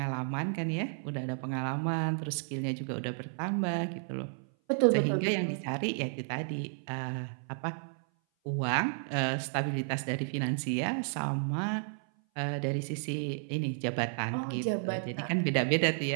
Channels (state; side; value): silent; left; 56 dB below the other